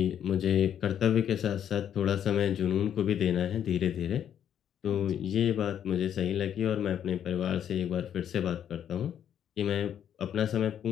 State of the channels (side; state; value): right; quieter; 9.5 dB